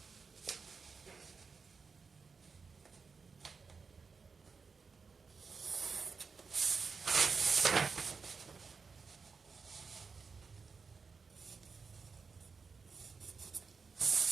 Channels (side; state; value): left; quieter; 5.0 dB